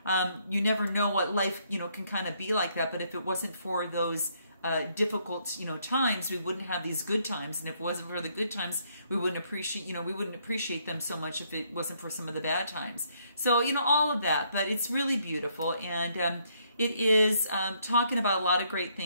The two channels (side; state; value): both; inverted; correlation -0.70